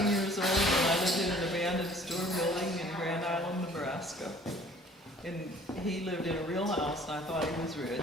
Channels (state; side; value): normal; both; correlation 0.53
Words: years old and I lived in an abandoned store building in Grand Island, Nebraska. And he lived in a real house and I thought he was